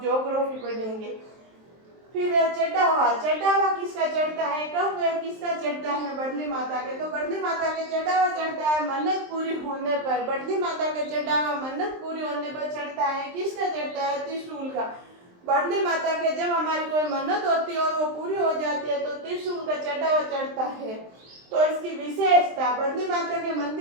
पढ़ेंगे। फिर चढ़ा हुआ, चढ़ा हुआ किसका चढ़ता है? कब वह किसका चढ़ता है? बढ़ली माता के। तो बढ़ली माता के चढ़ा हुआ चढ़ता है मन्नत पूरी होने पर। बढ़ली माता के चढ़ा हुआ मन्नत पूरी होने पर चढ़ता है। किसका चढ़ता है? त्रिशूल का। बढ़ली माता के जब हमारी कोई मन्नत होती है और वो पूरी हो जाती है तो त्रिशूल का चढ़ा हुआ चढ़ता है। तो इसकी विशेषता, बढ़ली माता के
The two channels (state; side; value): late; left; 23 ms